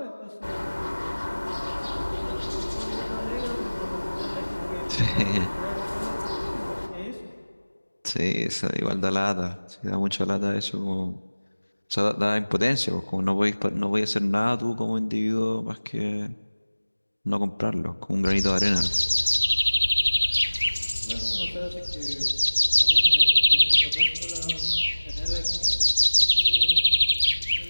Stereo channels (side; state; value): both; inverted; correlation -1.00